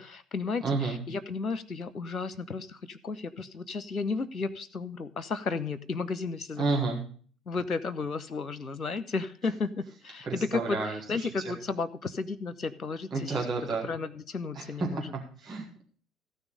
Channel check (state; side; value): normal; both; correlation 0.66